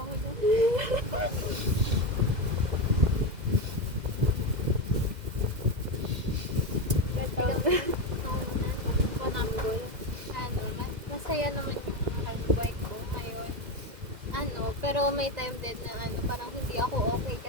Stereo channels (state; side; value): late; left; 2.0 ms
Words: na. Masaya naman yung buhay ko ngayon. Pero may time din na parang hindi ako okay